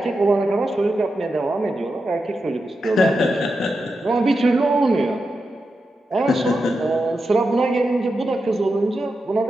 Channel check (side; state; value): both; normal; correlation 0.89